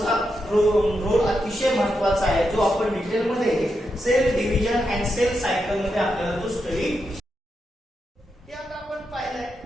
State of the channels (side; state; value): both; normal; correlation 0.85